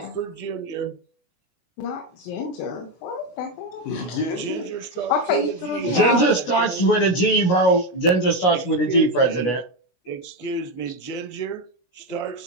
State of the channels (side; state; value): right; late; 16 ms